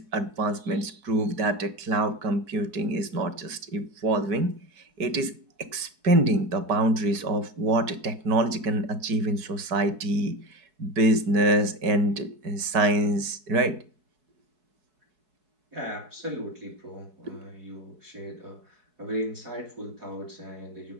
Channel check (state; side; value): late; left; 4.7 ms